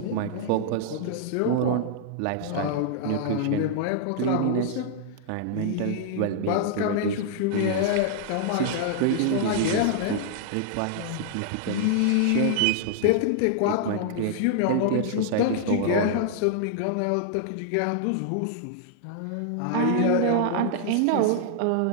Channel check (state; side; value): different; both; correlation -0.01